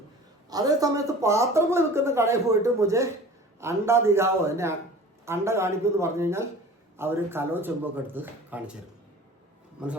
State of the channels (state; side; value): normal; both; correlation 0.42